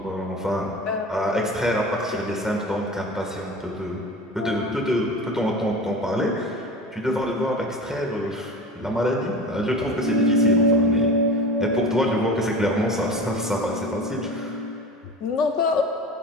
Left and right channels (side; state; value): both; normal; correlation 0.33